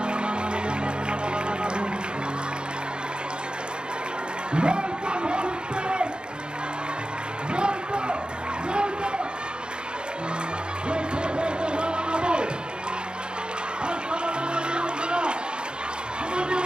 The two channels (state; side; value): late; left; 0.050 ms